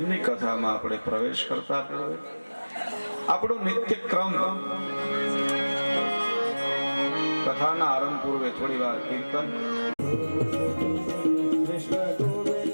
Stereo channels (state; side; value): inverted; both; correlation -1.00